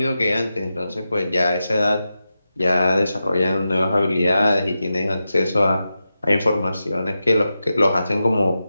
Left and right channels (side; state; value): both; inverted; correlation -0.91